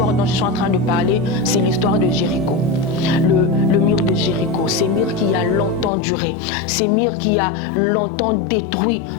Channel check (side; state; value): right; drops out; at 5.9 s